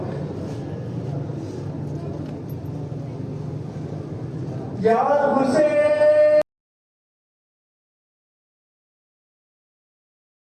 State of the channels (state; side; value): identical; both; correlation 1.00